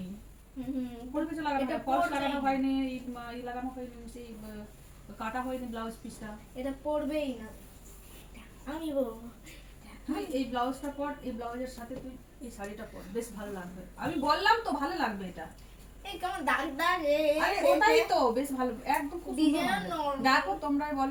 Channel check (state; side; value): identical; both; correlation 1.00